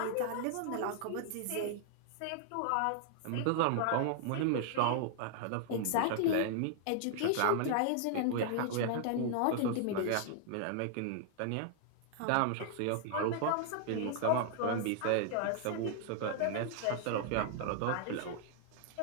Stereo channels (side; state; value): both; different; correlation -0.01